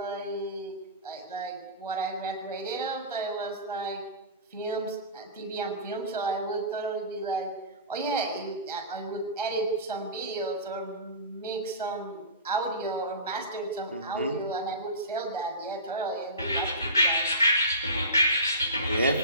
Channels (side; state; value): both; inverted; correlation -0.30